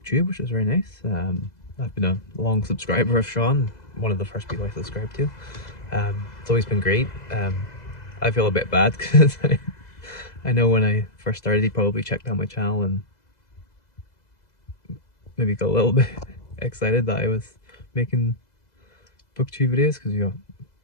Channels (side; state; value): right; late; 2.0 ms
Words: which was very nice. I've been a long subscriber of Sean, one of the first people I subscribed to. It's always been great. I feel a bit bad because I know when I first started he probably checked out my channel and maybe got a little bit excited that I was making BookTube videos, because